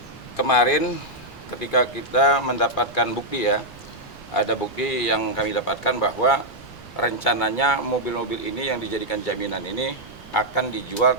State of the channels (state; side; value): noise; right; rumble, 22 dB below the sound